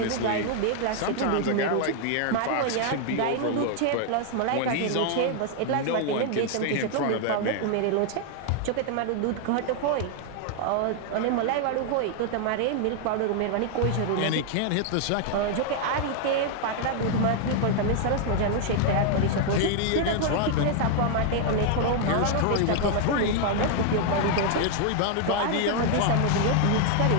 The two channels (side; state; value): both; different; correlation 0.00